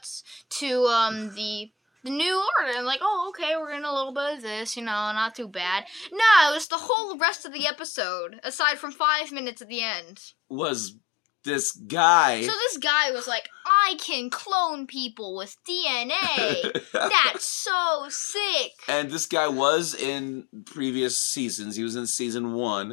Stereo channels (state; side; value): drops out; right; at 6.7 s